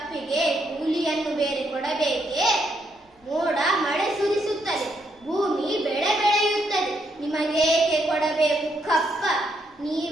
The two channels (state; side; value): normal; both; correlation 0.76